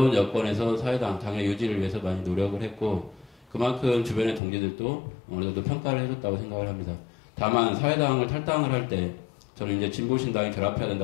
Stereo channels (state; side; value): drops out; right; at 4.4 s